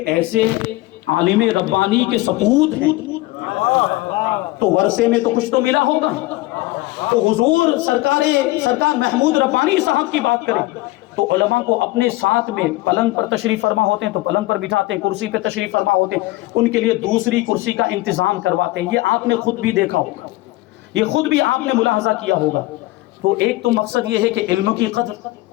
ایسے عالم ربانی کے سپوت ہیں تو ورثے میں تو کچھ تو ملا ہوگا۔ تو حضور سرکار محمود ربانی صاحب کی بات کریں تو علماء کو اپنے ساتھ میں پلنگ پر تشریف فرما ہوتے ہیں تو پلنگ پر بٹھاتے ہیں، کرسی پہ تشریف فرما ہوتے ہیں، ان کے لیے دوسری کرسی کا انتظام کرواتے ہیں۔ یہ آپ نے خود بھی دیکھا ہوگا، یہ خود بھی آپ نے ملاحظہ کیا ہوگا۔ تو ایک تو مقصد یہ ہے کہ علم کی قدر،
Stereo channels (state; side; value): quieter; right; 19.3 dB